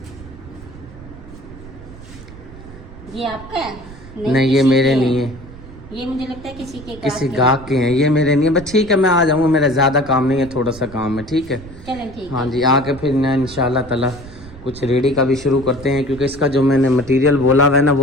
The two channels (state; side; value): noise; right; rumble, 17 dB below the sound